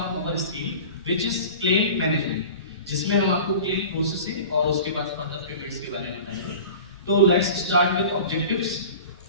our scheme, which is claim management, जिसमें हम आपको claim processing और उसके बाद further payments के बारे में बताएंगे. तो let's start with objectives.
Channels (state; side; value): inverted; both; correlation -0.38